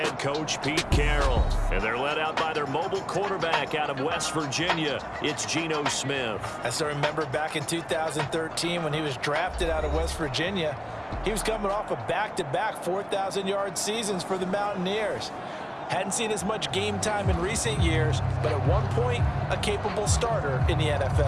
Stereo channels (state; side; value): identical; both; correlation 1.00